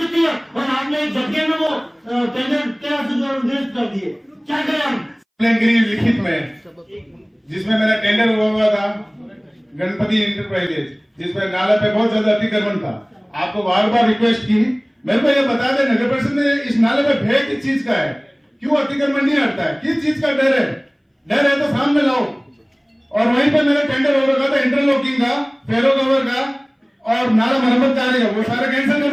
है और आपने एक झटके में वो टेंडर 1300 निरस्त कर दिए। क्या करें हम? लिखित में जिसमें मेरा टेंडर हुआ था गणपति इंटरप्राइजेज, जिसमें नाला पे बहुत ज्यादा अतिक्रमण था। आपको बार बार रिक्वेस्ट की, मेरे को ये बता दे नगर परिषद में इस नाले पे भय किस चीज का है, क्यों अतिक्रमण नहीं हटता है, किस चीज का डर है? डर है तो सामने लाओ। और वहीं पे मेरा टेंडर हो रखा था इंटरलॉकिंग का, फेरो कवर का और नाला मरम्मत कार्य का, वो सारा कैंसिल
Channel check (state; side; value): identical; both; correlation 1.00